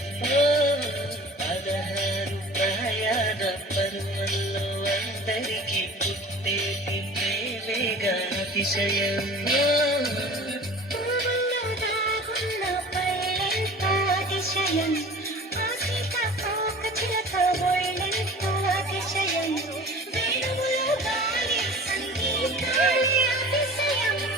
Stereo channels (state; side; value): normal; both; correlation 0.42